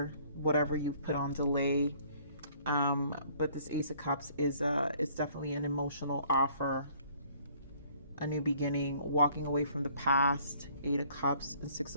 Whatever you've put on delay. But this Ace of Cups is it's definitely an emotional offer, a new beginning, walking away from the past. Eight of Cups and Six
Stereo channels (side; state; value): both; inverted; correlation -0.59